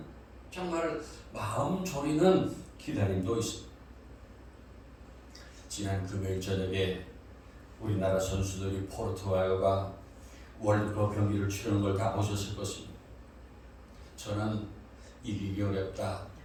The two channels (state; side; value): identical; both; correlation 1.00